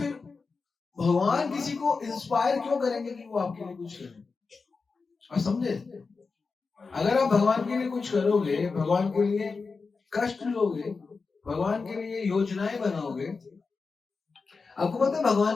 भगवान किसी को इंस्पायर क्यों करेंगे कि वो आपके लिए कुछ करें? और समझे, अगर आप भगवान के लिए कुछ करोगे, भगवान के लिए कष्ट लोगे, भगवान के लिए योजनाएं बनाओगे। आपको पता है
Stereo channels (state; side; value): quieter; right; 4.5 dB